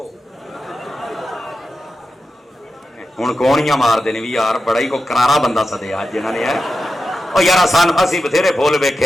ہوں کونیاں مار دینے بھی یار, بڑا ہی کو کرارا بندہ سدیا جنہوں نے ہے. اور یار سان اسی بتھیرے بھول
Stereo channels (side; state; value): both; normal; correlation 0.90